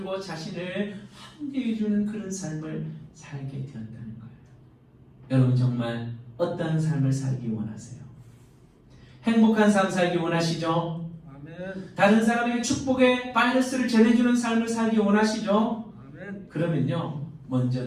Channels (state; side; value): identical; both; correlation 1.00